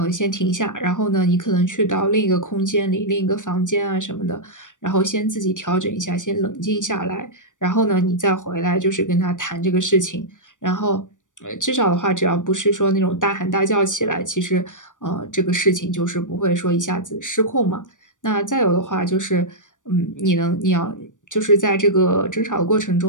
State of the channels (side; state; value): right; late; 0.87 ms